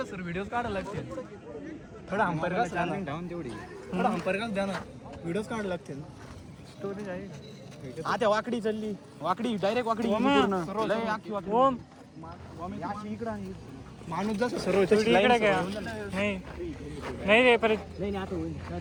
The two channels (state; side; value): identical; both; correlation 1.00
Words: सर व्हिडिओ काढायला लागते थोडा अंपायर का चार्जिंग ठेवून तेवढी थोडा अंपायर का द्या ना व्हिडिओज काढायला लागतील स्टोरेज आहे आता वाकडी चालली वाकडी डायरेक्ट वाकडी पूर्ण लय आखी वाकडी ओम इकडं आहे माणूस जसं सर्व इकडे काय नाही नाही रे परत